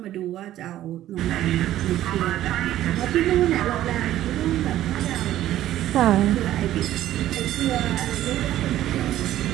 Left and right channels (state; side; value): quieter; left; 13.3 dB